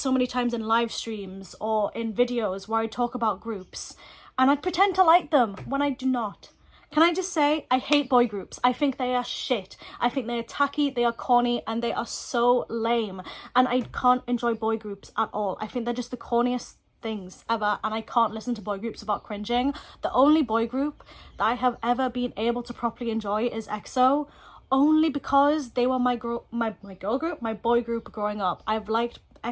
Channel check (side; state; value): both; identical; correlation 1.00